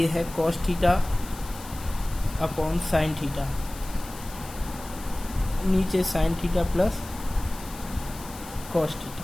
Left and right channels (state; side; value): noise; left; hiss, 16 dB below the sound